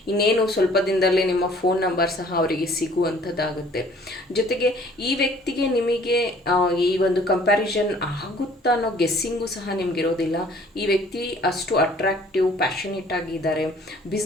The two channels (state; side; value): normal; both; correlation 0.55